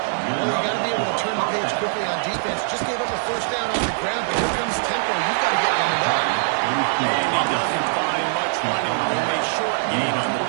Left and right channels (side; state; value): left; silent; digital silence